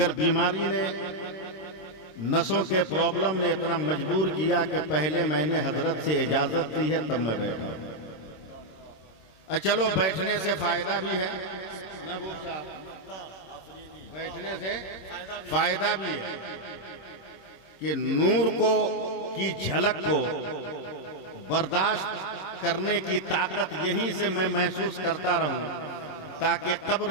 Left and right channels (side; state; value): right; late; 26 ms